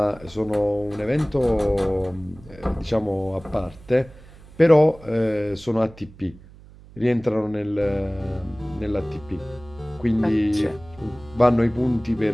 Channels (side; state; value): right; noise; hum, 21 dB below the sound